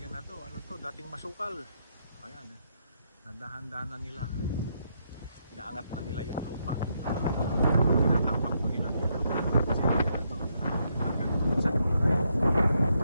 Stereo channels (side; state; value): both; inverted; correlation -0.77